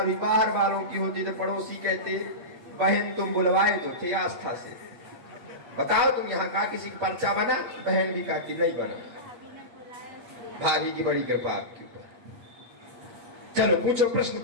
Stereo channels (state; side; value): late; left; 8.4 ms